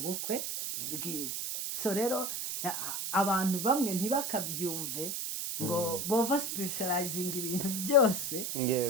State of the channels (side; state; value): right; noise; hiss, 3 dB below the sound